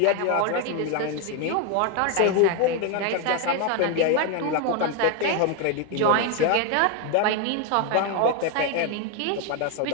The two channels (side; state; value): both; different; correlation 0.01